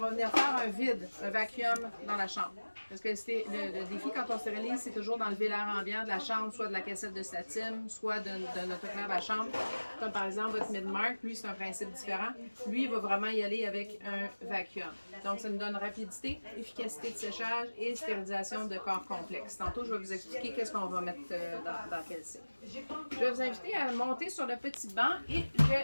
venir faire un vide, un vacuum dans la chambre. Parce que le défi quand on stérilise, c'est toujours d'enlever l'air ambiant de la chambre, soit de la cassette de statim, soit de notre autoclave à chambre. Comme par exemple votre Midmark, lui c'est un principe différent. Lui, il va vraiment y aller avec un vacuum. Donc ça nous donne rapidité, efficacité de séchage et stérilisation de corps complexes. Tantôt, je vais vous expliquer qu'est-ce qu'on va mettre dans quel cycle. Je vais vous inviter à monter sur le petit banc et je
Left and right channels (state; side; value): inverted; both; correlation -1.00